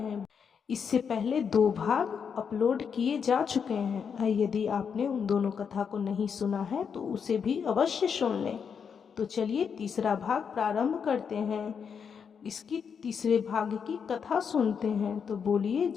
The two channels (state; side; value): quieter; right; 6.7 dB